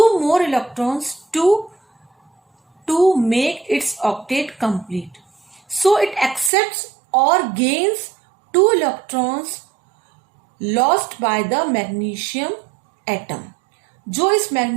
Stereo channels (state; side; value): drops out; left; at 6.5 s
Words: more electrons to make its octet complete. So it accepts or gains 2 electrons lost by the magnesium atom. जो इस